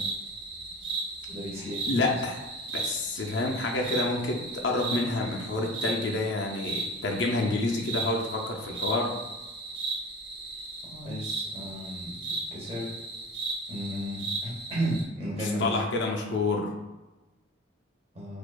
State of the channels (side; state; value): both; normal; correlation 0.35